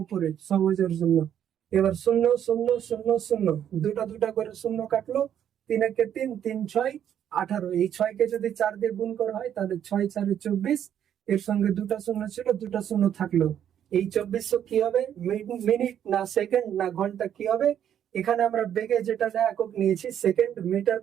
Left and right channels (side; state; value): left; quieter; 9.7 dB